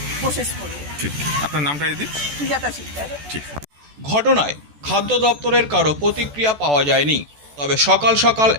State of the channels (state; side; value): late; left; 14 ms